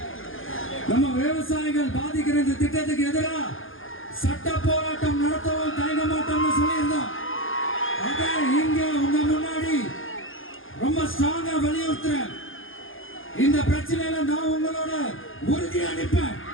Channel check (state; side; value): late; right; 0.59 ms